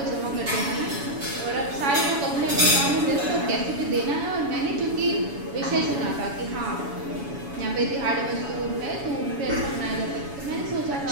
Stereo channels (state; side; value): late; left; 7.1 ms